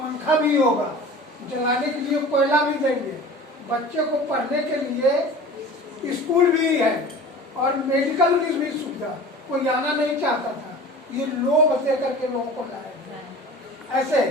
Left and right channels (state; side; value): normal; both; correlation 0.39